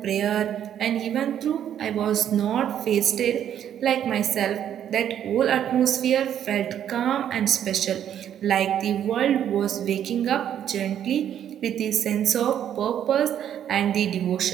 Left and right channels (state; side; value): quieter; left; 10.0 dB